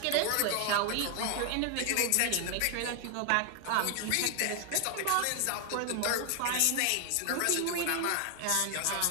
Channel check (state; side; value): different; both; correlation 0.00